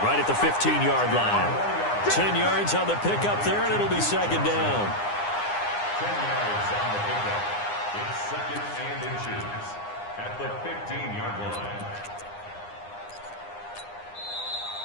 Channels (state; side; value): late; right; 9.8 ms